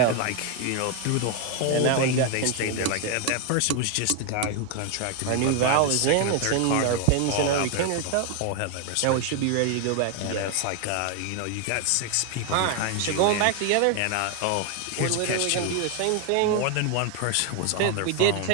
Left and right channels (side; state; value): both; different; correlation 0.01